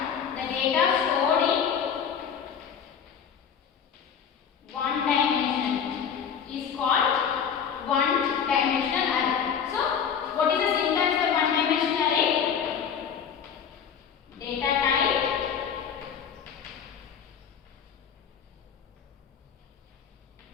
the data stored in one dimension is called one dimensional array. So what is the syntax for one dimensional array? Data type,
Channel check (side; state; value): right; quieter; 7.5 dB